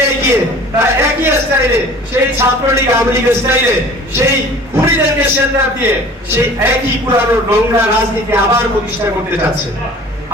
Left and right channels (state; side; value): normal; both; correlation 0.45